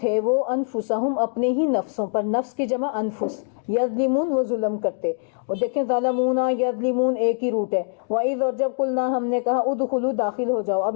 وہ انفسہم اپنے ہی نفسوں پر. نفس کی جمع انفس. یظلمون وہ ظلم کرتے. اور دیکھیں ظلمونا یظلمون ایک ہی روٹ ہے. وَإِذْ اور جب قلنا ہم نے کہا ادخلوا داخل ہو جاؤ. اب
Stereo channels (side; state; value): right; silent; digital silence